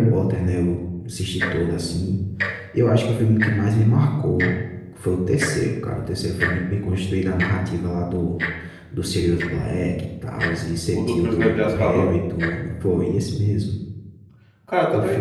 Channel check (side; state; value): both; identical; correlation 1.00